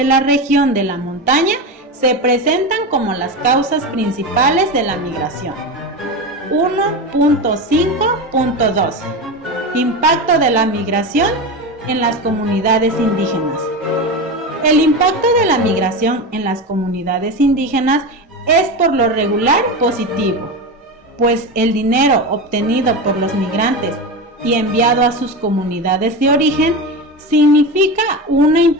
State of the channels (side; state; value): both; normal; correlation 0.21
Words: la región de la montaña se presentan como las causas principales de la migración. 1.5.2. Impacto de la migración en las comunidades indígenas. El impacto de la migración en las comunidades indígenas es por lo regular positivo, pues el dinero obtenido por los migrantes y enviado a sus comunidades de origen significa una